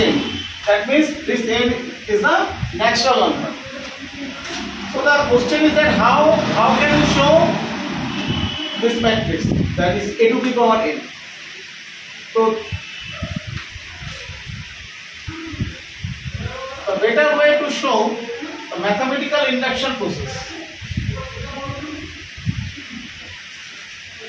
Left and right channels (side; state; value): both; identical; correlation 1.00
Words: That means this n is the natural number. So the question is that how can we show this matrix, that is a to the power n. So the better way to show the mathematical induction process.